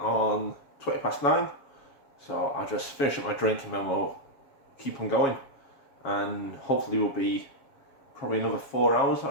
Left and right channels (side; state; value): right; late; 7.3 ms